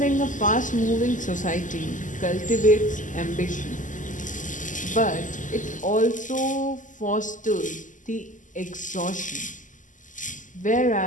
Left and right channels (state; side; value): late; right; 0.37 ms